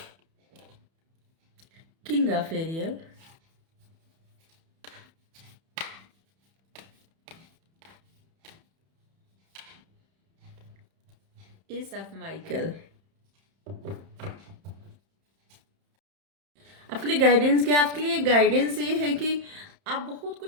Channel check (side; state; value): left; late; 31 ms